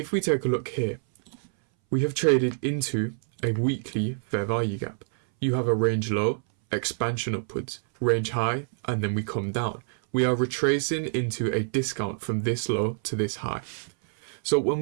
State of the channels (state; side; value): silent; left; 60 dB below the other